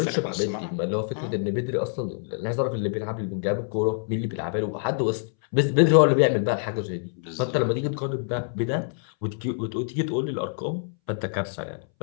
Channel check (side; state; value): right; silent; 61 dB below the other